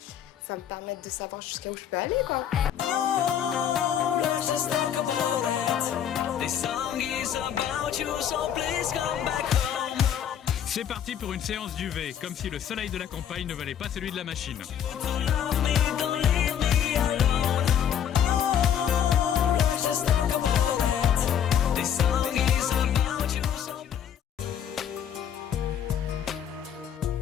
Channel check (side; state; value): right; quieter; 9.2 dB